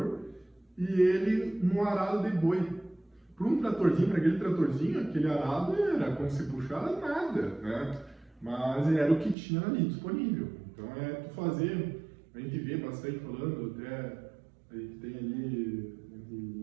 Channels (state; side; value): drops out; left; at 9.3 s